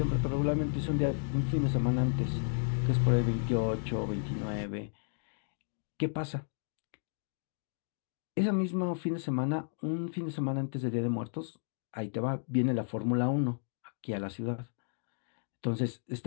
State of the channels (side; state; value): right; silent; digital silence